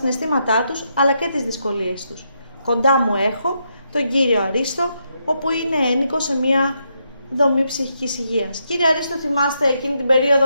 τους αλλά και τις δυσκολίες τους. Κοντά μου έχω τον κύριο Αρίστο, όπου είναι ένοικος σε μια δομή ψυχικής υγείας. Κύριε Αρίστο, θυμάστε εκείνη την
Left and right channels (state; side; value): inverted; both; correlation -0.80